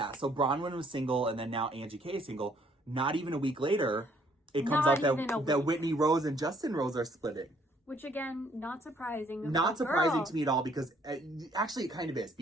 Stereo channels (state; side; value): normal; both; correlation 0.65